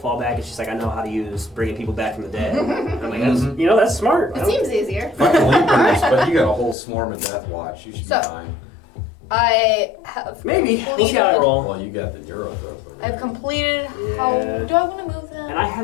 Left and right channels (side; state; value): right; drops out; at 6.8 s